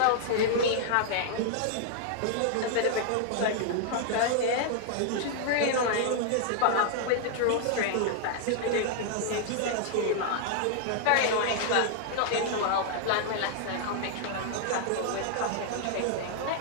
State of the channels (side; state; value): both; different; correlation 0.00